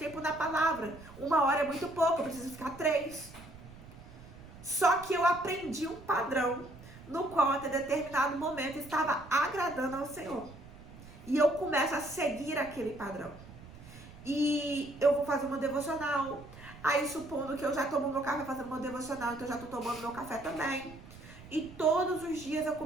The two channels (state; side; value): noise; right; rumble, 18 dB below the sound